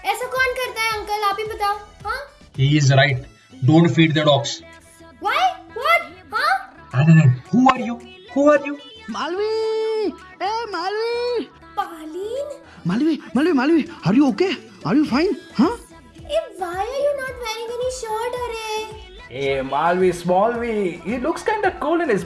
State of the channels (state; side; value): identical; both; correlation 1.00